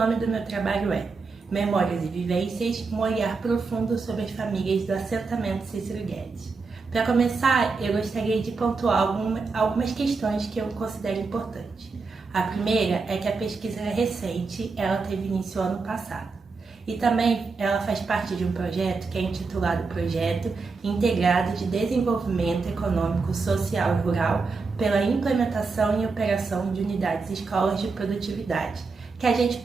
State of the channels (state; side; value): quieter; left; 4.4 dB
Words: do meu trabalho é Memórias e Vivências, um olhar profundo sobre as famílias do assentamento Cícero Guedes. Para começar, eu gostaria de pontuar algumas questões que eu considero importantes. A primeira é que a pesquisa é recente, ela teve início ano passado. E também ela faz parte de um projeto que é intitulado Projeto Integrado de Desenvolvimento Econômico, Social e Rural pela Implementação e Operação de Unidades Escolas de Produtividade, que a gente